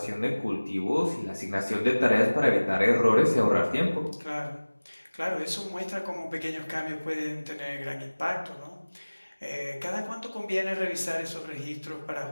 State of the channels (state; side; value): inverted; both; correlation -1.00